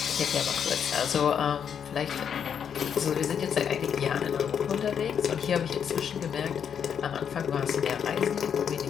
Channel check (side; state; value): right; quieter; 7.9 dB